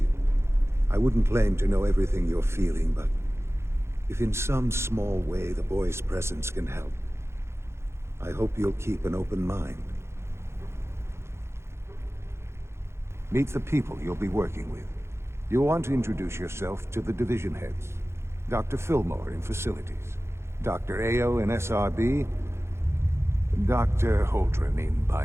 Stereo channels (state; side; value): late; left; 0.13 ms